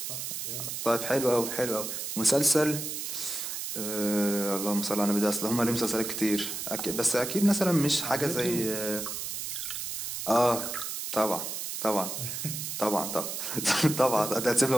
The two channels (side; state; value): right; noise; hiss, 5 dB below the sound